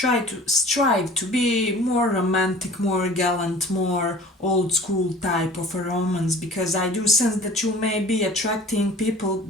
to strive to be more romantic, more gallant, more old school type of a romance, because I do sense that you may be attracting people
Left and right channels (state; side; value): normal; both; correlation 0.44